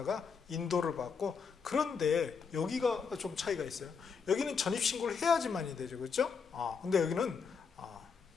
인도를 받고, 그런데 여기가 좀 차이가 있어요. 여기는 전입 신고를 해야지만이 되죠, 그렇죠? 근데 여기는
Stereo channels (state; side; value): quieter; right; 5.8 dB